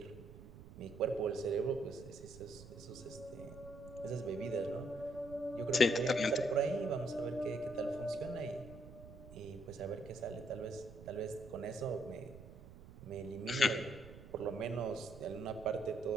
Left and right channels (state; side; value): noise; right; rumble, 16 dB below the sound